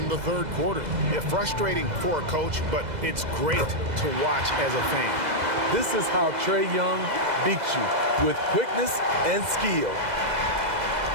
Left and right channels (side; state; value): left; late; 2.0 ms